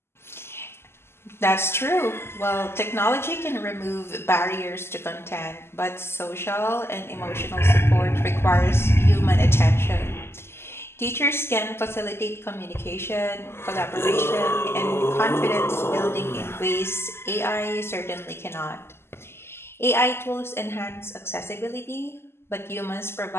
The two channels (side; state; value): right; late; 0.12 ms